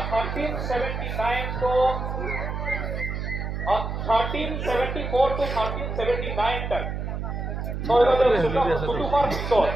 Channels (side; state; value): right; noise; hum, 4 dB below the sound